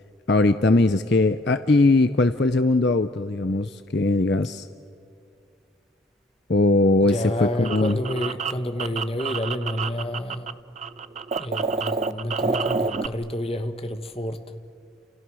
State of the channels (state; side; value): normal; both; correlation 0.58